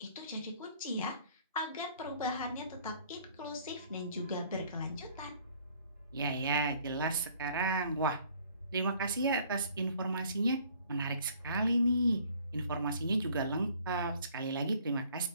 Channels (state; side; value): inverted; both; correlation -0.57